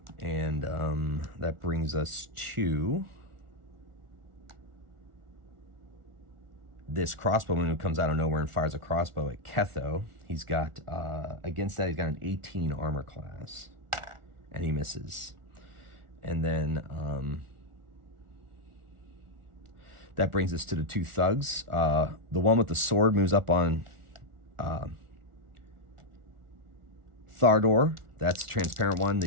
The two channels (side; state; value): left; late; 1.4 ms